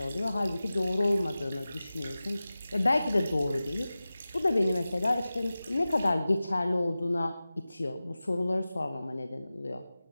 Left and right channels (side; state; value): both; inverted; correlation -0.96